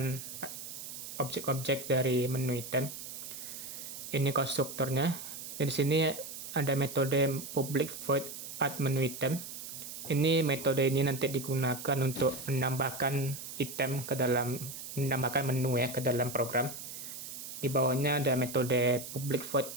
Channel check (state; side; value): noise; right; hiss, 10 dB below the sound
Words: objek-objek dari menu item. Ini konstruktornya. Di sini ada metode public void add menu item. Ini metode ini nanti digunakan untuk menambahkan menambahkan menu ya ke dalam program. Di bawahnya ada metode public void